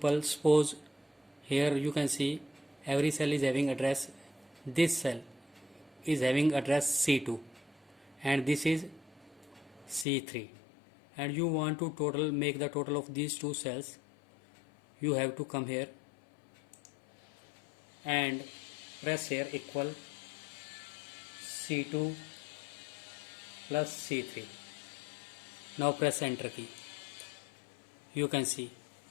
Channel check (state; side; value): drops out; right; at 10.1 s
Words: suppose here you can see every cell is having address. This cell is having address C2 and this is C3, and you want to make the total of these two cells. You have to come here and press here equal C2 plus C3. Now press enter key. You can see